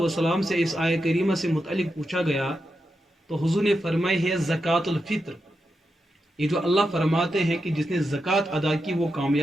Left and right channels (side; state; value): both; normal; correlation 0.87